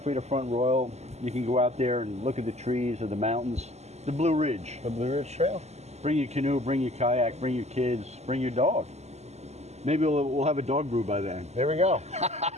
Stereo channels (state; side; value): late; left; 0.32 ms